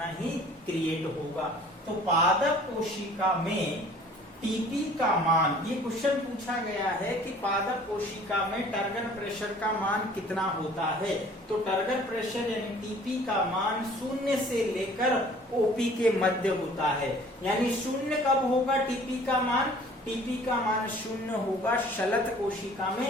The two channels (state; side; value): normal; both; correlation 0.51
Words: ही क्रिएट होगा। तो पादप कोशिका में टीपी का मान, ये क्वेश्चन पूछा गया है कि पादप कोशिका में टर्गर प्रेशर का मान कितना होता है। तो टर्गर प्रेशर यानी टीपी का मान 0 से लेकर ओपी के मध्य होता है। यानी 0 कब होगा टीपी का मान? टीपी का मान 0 होगा शलथ कोशिका